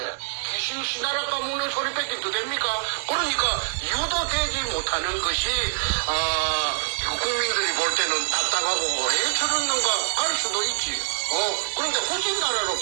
귀신 씨나라 까먹는 소리밖에 더 됩니까? 그러니까 유도되지 못하는 것이 국민들이 볼 때는 답답하고 왜 저러는가 할 수도 있지. 그런데 후진나라로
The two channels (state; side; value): silent; left; digital silence